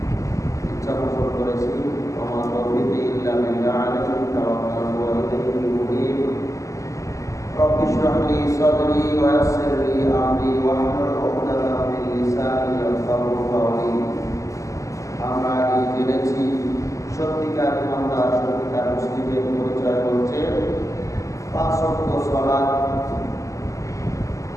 ইচ্ছা পোষণ করেছি। ওমা তৌফিকি ইল্লা বিল্লাহ আলাইহি তাওয়াক্কালতু ওয়া ইলাইহি উনীব। রব্বি ইশরাহ লি সাদরি ওয়া ইয়াসসির লি আমরি ওয়াহলুল উকদাতাম মিন লিসানি ইয়াফকাহু কাওলি। আমরা আগে জেনেছি সত্যিকার ইমানদার, সত্যিকার মুসলিমের পরিচয় হচ্ছে পাঁচ ওয়াক্ত সালাত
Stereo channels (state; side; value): late; right; 0.16 ms